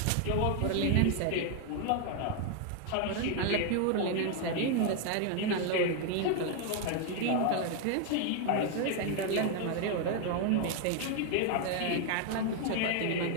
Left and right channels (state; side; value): different; both; correlation 0.01